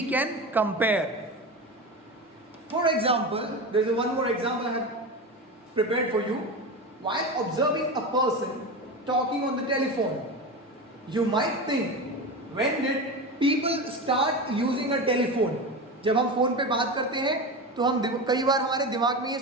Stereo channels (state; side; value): normal; both; correlation 0.24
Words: can compare. For example, there is one more example I have prepared for you. While observing a person talking on the telephone, you might think, when did people start using a telephone? जब हम phone पे बात करते हैं तो हम कई बार हमारे दिमाग में ये